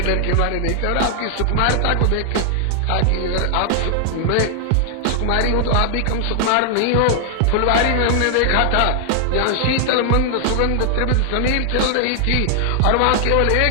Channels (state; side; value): different; both; correlation 0.00